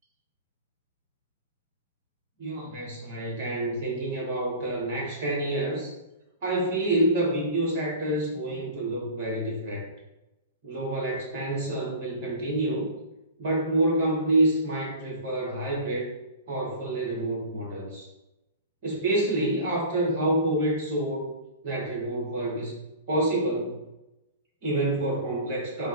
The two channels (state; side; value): inverted; both; correlation -0.38